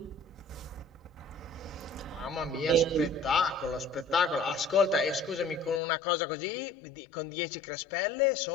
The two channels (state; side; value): drops out; right; at 5.8 s